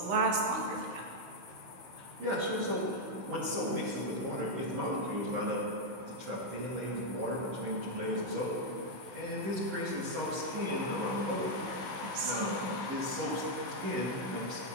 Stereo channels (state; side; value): late; left; 16 ms